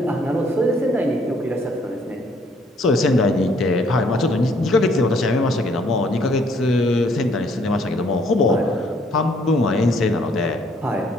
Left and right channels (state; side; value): normal; both; correlation 0.65